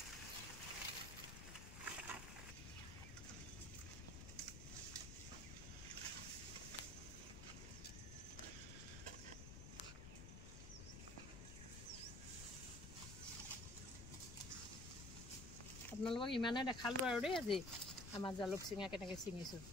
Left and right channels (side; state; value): left; noise; rumble, 9 dB below the sound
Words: আপোনালোকক ইমানে দেখালোঁ আৰু দেই আজি আমাৰ জালুক ছিঙা কেনেকৈ ছিঙিছোঁ।